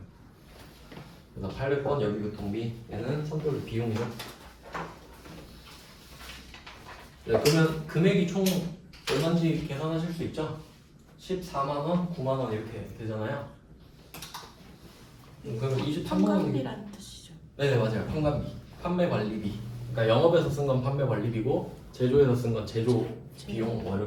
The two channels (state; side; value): identical; both; correlation 1.00